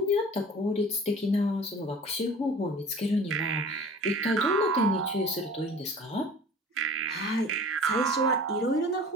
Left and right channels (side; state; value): both; normal; correlation 0.43